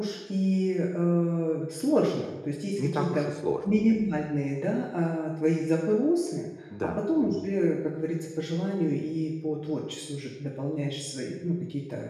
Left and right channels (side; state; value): both; identical; correlation 1.00